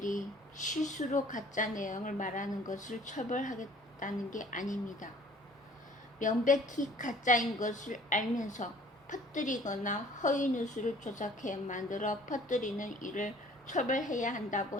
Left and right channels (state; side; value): normal; both; correlation 0.53